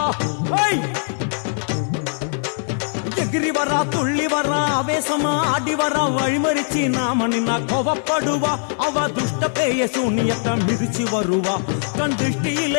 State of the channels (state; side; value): silent; right; 65 dB below the other